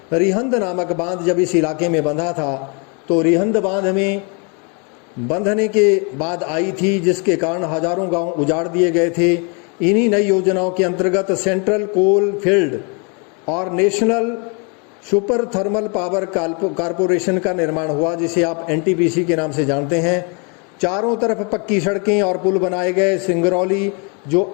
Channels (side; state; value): right; quieter; 34.6 dB